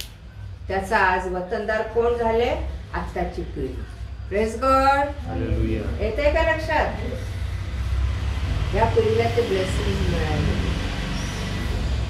त्याचा आज वतनदार कोण झाले? आत्ताची पिढी. Praise God. येते का लक्षात? या पिढीला ते ब्लेसिंग मिळाले.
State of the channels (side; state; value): both; identical; correlation 1.00